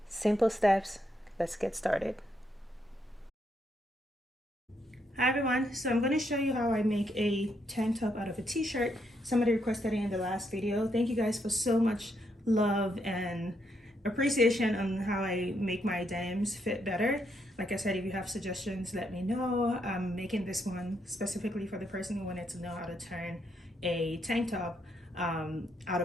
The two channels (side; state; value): both; normal; correlation 0.77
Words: Simple steps, let's get started. Hi everyone, so I'm going to show you how I make a tank top out of a t-shirt. Somebody requested it in the last video. Thank you guys for so much love and appreciation on how I make my denims fit better. Like I said, if you have suggestions, let me know. I'm making this one specifically for the person who wanted to know how to turn a tank top out